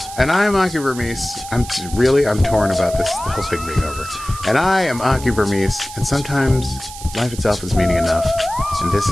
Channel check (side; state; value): right; noise; hiss, 14 dB below the sound